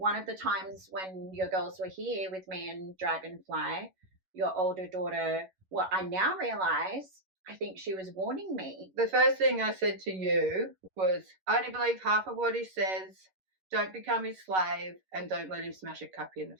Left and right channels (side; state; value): left; late; 11 ms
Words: of the times when your girls were here with me and Dragonfly, your older daughter, well, I now realise, I think she was warning me. The first thing I said to you was, I only believe half of what he says, don't become his slave, and don't let him smash a cup in the